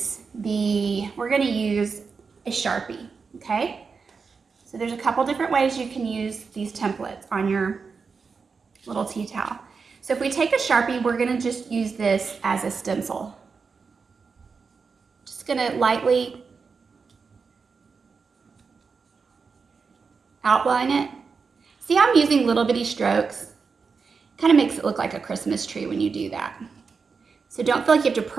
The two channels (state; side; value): quieter; left; 5.2 dB